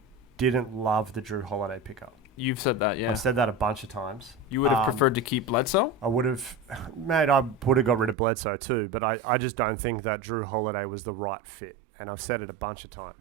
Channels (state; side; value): drops out; left; at 8.2 s